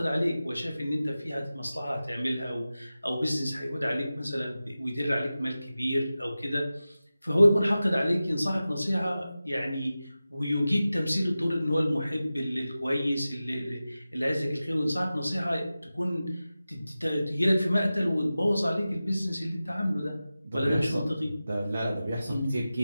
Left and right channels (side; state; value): both; inverted; correlation -0.95